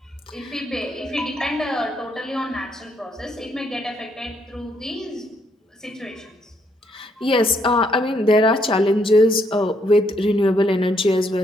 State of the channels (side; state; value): both; normal; correlation 0.72